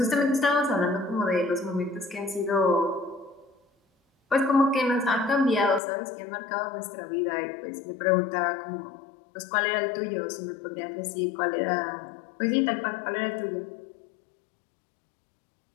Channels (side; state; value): right; drops out; at 5.8 s